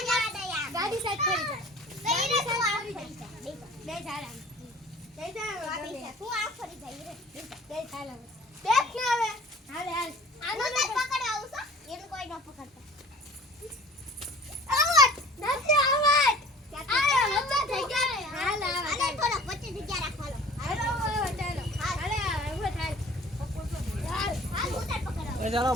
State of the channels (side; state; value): both; normal; correlation 0.47